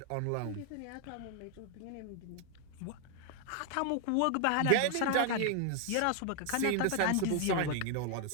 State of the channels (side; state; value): both; different; correlation 0.00